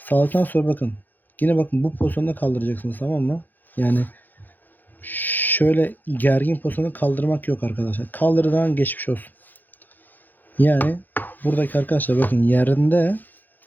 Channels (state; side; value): late; right; 0.090 ms